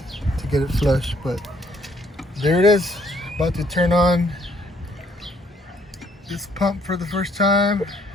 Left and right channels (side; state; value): both; normal; correlation 0.66